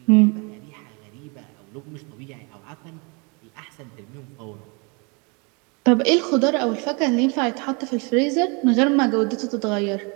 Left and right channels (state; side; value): quieter; left; 31.8 dB